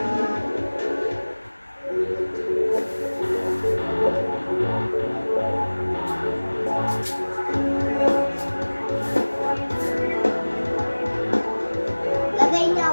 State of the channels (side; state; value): both; inverted; correlation -1.00